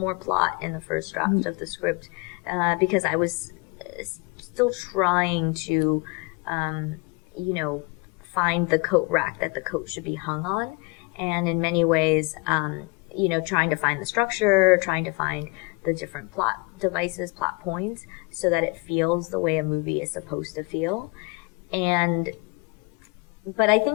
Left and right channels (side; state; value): right; quieter; 26.8 dB